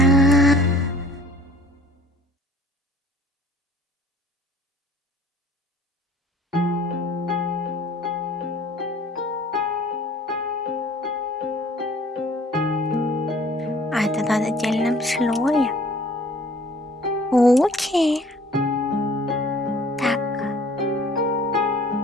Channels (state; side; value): normal; both; correlation 0.52